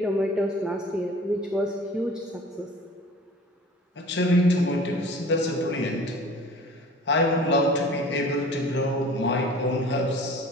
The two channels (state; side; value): normal; both; correlation 0.44